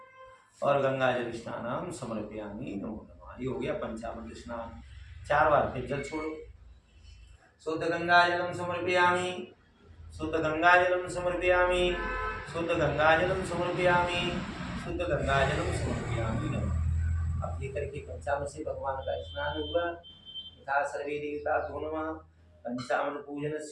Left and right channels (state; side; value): identical; both; correlation 1.00